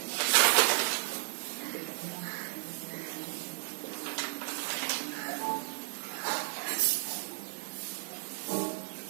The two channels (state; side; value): silent; left; digital silence